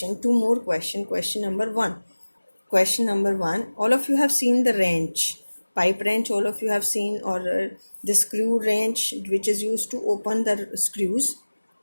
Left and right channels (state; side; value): inverted; both; correlation -1.00